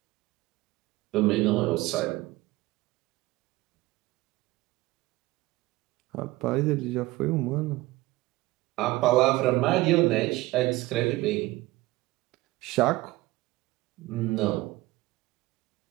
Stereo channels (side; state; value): left; quieter; 19.5 dB